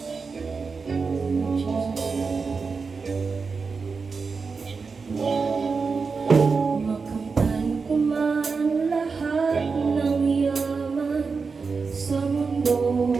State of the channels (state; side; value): quieter; left; 4.9 dB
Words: Makamtan ko man lahat ng yaman sa mundo.